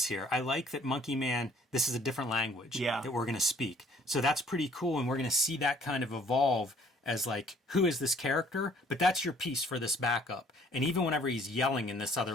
here. I like that Monkeyman, this is a different language that we're going to speak. So that's pretty cool, and we're going to see that kind of evolve as like, who is this character? But that's your piece for this backup. And even whenever he's yelling in this other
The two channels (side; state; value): both; normal; correlation 0.58